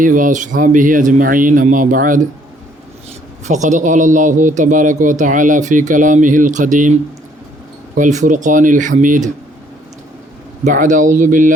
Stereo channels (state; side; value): normal; both; correlation 0.64